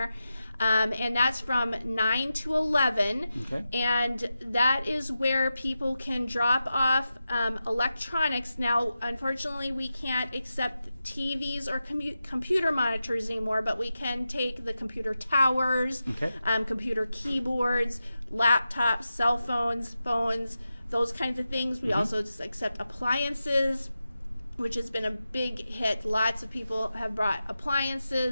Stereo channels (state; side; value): inverted; both; correlation -0.91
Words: And that's from 9 to 11. Okay. And that is where people can drop off electronics. Now, unfortunately, we can't accept TVs or computer monitors anymore, but we can take the computer towers, computer keyboards, laptops, cell phones, those kinds of things. We also accept appliances, which has been a big hit. Lots of people have brought